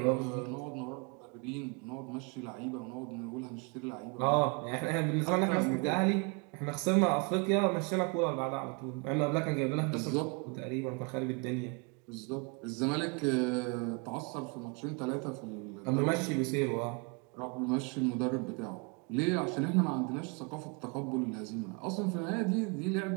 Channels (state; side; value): quieter; left; 32.3 dB